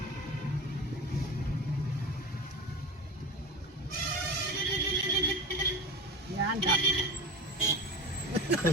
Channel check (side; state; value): both; normal; correlation 0.28